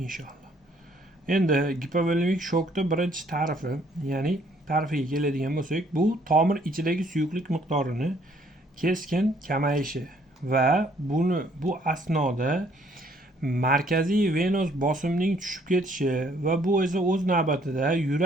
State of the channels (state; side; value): normal; both; correlation 0.64